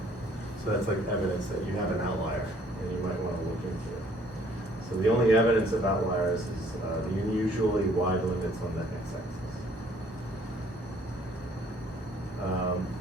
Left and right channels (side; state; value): both; normal; correlation 0.60